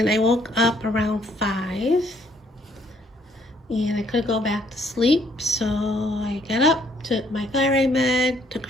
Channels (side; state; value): both; normal; correlation 0.66